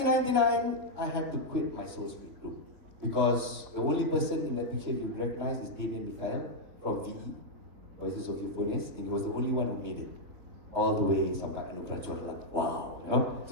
I had to quit my Soul Speak group because the only person in that picture you would recognize is Damien Mikhail from VE, Voices of Euphonious, and he was the only one who made it all the way sampai Anugerah. Wow, you know.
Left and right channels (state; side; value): late; left; 3.9 ms